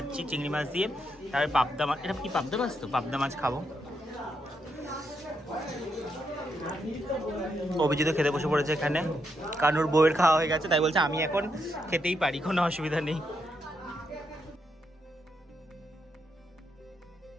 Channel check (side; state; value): both; normal; correlation 0.80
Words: চিংড়ি মাছ দিয়ে। তারপরে পাবদা মাছ, এটা কি পাবদা মাছ? তো পাবদা মাছ খাবো। অভিজিৎ খেতে বসে পড়েছে এখানে, কারণ ওর বউয়ের খাওয়া হয়ে গেছে, তাই বলছে আমি এখন খেতেই পারি, কোনো অসুবিধা নেই।